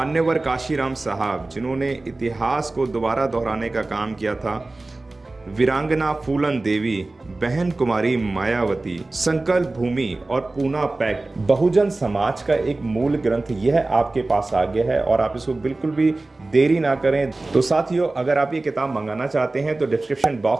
काशीराम साहब, जिन्होंने इतिहास को दोबारा दोहराने का काम किया था। वीरांगना फूलन देवी, बहन कुमारी मायावती, संकल्प भूमि और पूना पैक्ट बहुजन समाज का एक मूल ग्रंथ यह आपके पास आ गया है और आप इसको बिल्कुल भी देरी ना करें। तो साथियों, अगर आप ये किताब मंगाना चाहते हैं तो डिस्क्रिप्शन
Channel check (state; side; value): quieter; left; 3.1 dB